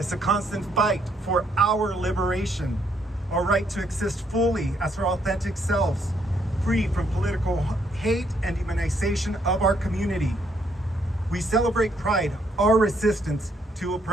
a constant fight for our liberation, our right to exist fully as our authentic selves, free from political hate and demonization of our community. We celebrate Pride, our resistance to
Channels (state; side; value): normal; both; correlation 0.72